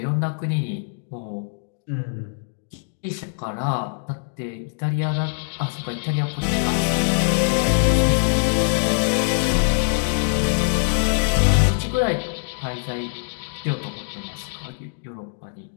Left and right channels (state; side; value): silent; right; digital silence